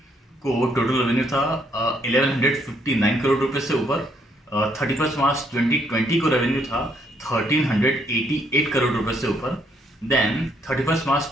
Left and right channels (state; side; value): normal; both; correlation 0.70